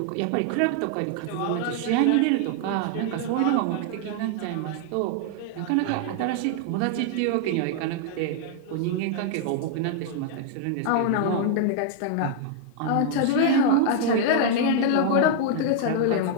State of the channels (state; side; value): different; both; correlation 0.00